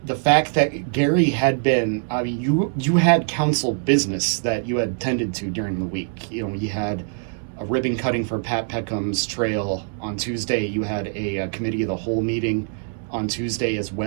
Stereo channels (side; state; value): left; silent; 63 dB below the other